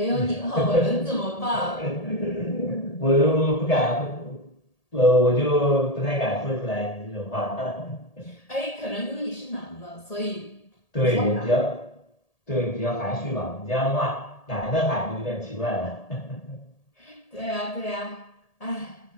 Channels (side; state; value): right; late; 1.8 ms